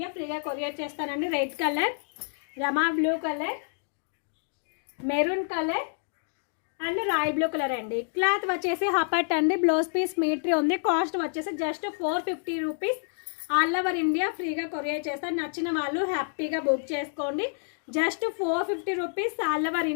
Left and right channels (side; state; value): right; silent; digital silence